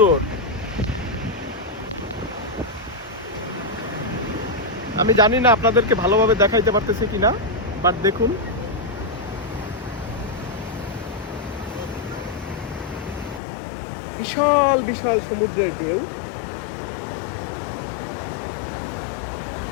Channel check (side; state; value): right; drops out; at 13.4 s